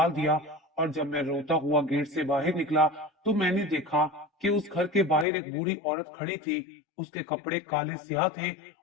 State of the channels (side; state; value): right; drops out; at 5.2 s